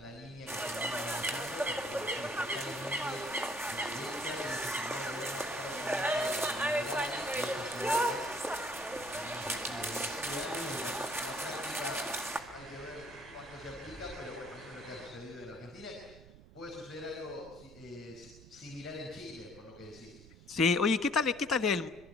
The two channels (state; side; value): noise; right; rumble, 20 dB below the sound